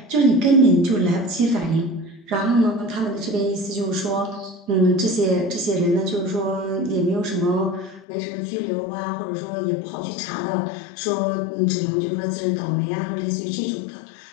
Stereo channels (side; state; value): right; drops out; at 8.1 s